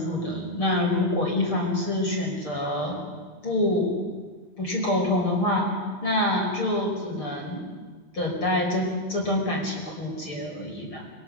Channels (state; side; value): late; right; 6.6 ms